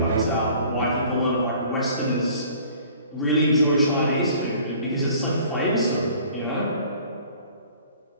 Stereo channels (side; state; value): both; inverted; correlation -0.51